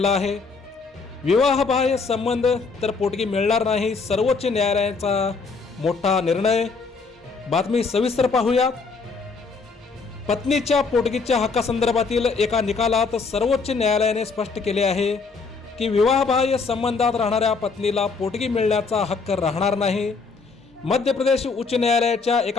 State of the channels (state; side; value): quieter; right; 4.5 dB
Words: आहे. विवाहबाह्य संबंध तर पोटगी मिळणार नाही, सर्वोच्च न्यायालयाचा मोठा निर्णय. बातमी सविस्तर पाहूयात. पत्नीच्या पोटगीच्या हक्कासंदर्भातील एका निकालात सर्वोच्च न्यायालयाने स्पष्ट केले आहे की विवाहबाह्य संबंधात राहणाऱ्या पत्नीला पोटगी मिळण्याचा हक्क राहणार नाही. मध्य प्रदेश उच्च न्यायालयाच्या